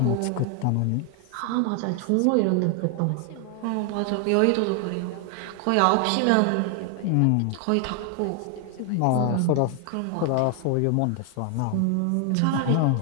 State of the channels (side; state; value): both; different; correlation 0.00